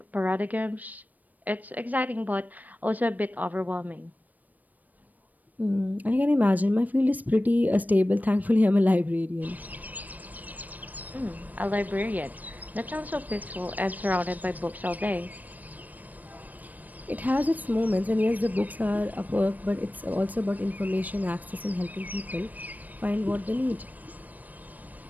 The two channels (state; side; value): late; left; 0.081 ms